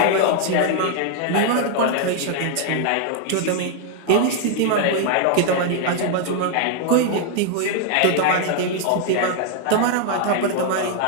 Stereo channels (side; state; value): both; different; correlation 0.00